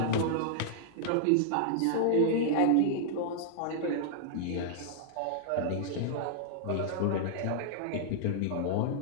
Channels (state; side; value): different; both; correlation -0.01